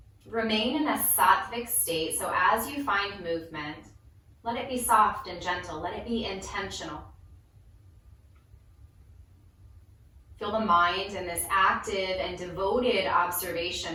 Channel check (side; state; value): both; identical; correlation 1.00